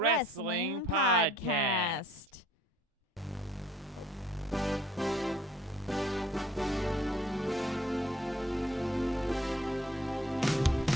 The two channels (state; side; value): normal; both; correlation 0.57